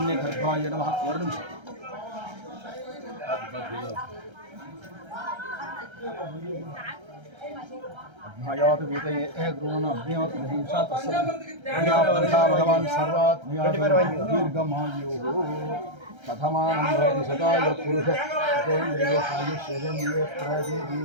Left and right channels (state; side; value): late; left; 1.3 ms